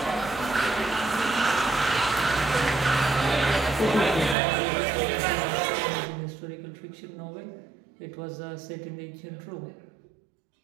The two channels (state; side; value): drops out; left; at 4.4 s